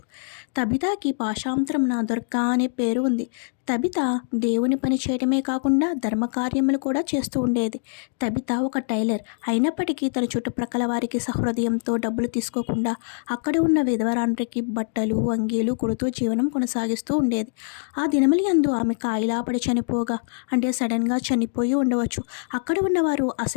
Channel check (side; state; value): right; silent; digital silence